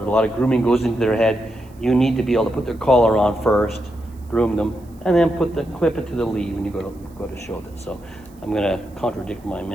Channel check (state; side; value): noise; right; hiss, 30 dB below the sound